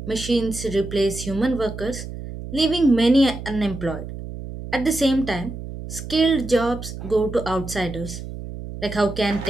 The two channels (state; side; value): noise; right; hum, 10 dB below the sound